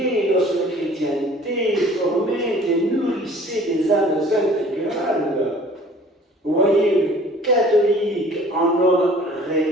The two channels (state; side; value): normal; both; correlation 0.50